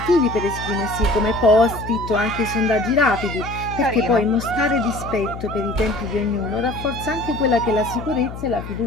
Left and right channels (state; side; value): noise; left; hum, 10 dB below the sound